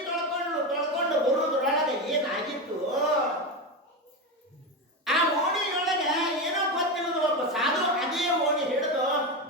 ತೊಳ್ಕೊಂಡು ಬರುವುದ್ರೊಳಗೆ ಏನಾಗಿತ್ತು, ಆ ಓಣಿಯೊಳಗೆ ಏನೋ ಗೊತ್ತಿಲ್ಲದ ಒಬ್ಬ ಸಾಧು ಅದೇ ಓಣಿ ಹಿಡಿದು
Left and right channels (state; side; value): normal; both; correlation 0.16